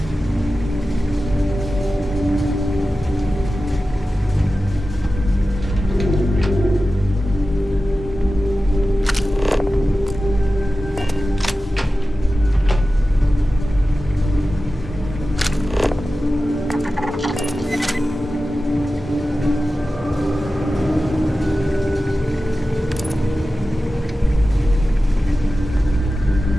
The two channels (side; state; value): both; normal; correlation 0.94